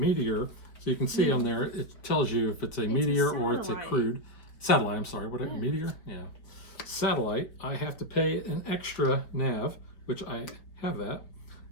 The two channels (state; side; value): late; right; 4.5 ms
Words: so you can see on there, it tells you if it's a meteor or it's a satellite. crude. Satellite, I'm sorry. What, Yeah. meteor? Yeah. Satellite, I have to pay an extra nav, which I have that.